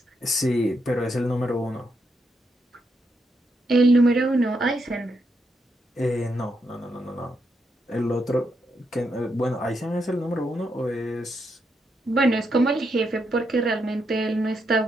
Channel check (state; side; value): normal; both; correlation 0.81